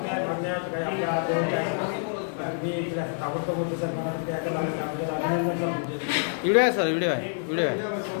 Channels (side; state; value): right; silent; 60 dB below the other